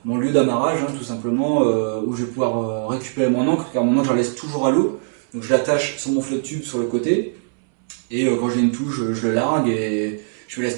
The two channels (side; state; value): left; silent; 65 dB below the other